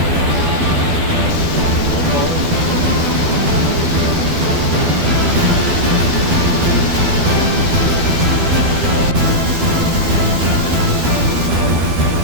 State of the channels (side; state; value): left; late; 12 ms